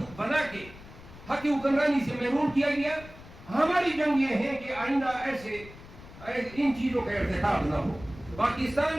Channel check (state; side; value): noise; left; rumble, 18 dB below the sound